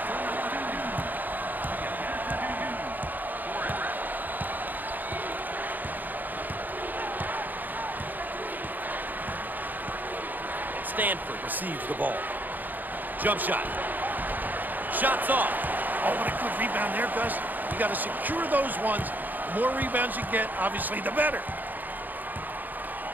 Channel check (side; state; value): left; late; 0.085 ms